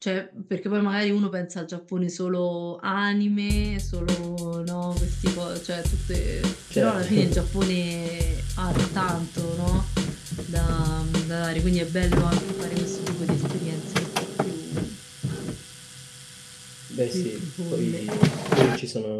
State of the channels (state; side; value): identical; both; correlation 1.00